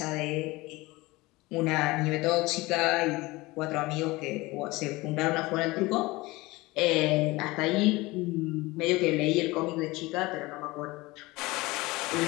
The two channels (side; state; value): right; quieter; 21.5 dB